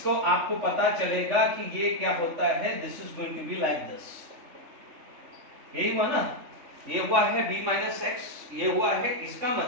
आपको पता चलेगा कि ये क्या होता है, this is going to be like this. यही हुआ ना, ये हुआ है b माइनस एक्स, ये हुआ है, इसका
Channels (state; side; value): late; left; 3.4 ms